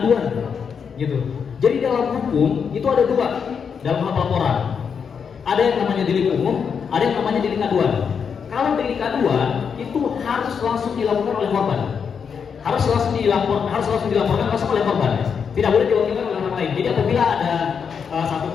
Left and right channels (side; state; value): right; quieter; 6.6 dB